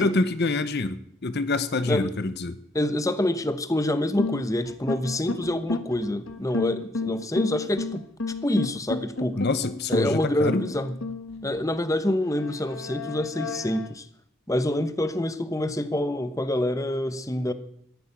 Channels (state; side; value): normal; both; correlation 0.70